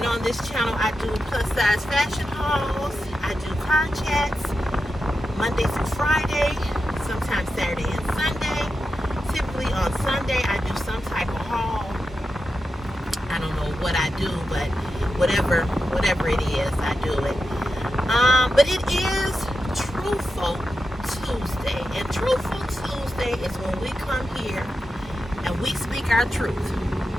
on this channel, I do plus-size fashion hauls. I do car chats Monday through Friday, sometimes Saturday and Sunday. Typically on Sunday, I do some type of haul. I don't know what I do, but whatever it is, I do it. But it is Truthful Tuesday. And Truthful Tuesday is when we come here and we speak our truth.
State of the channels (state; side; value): normal; both; correlation 0.90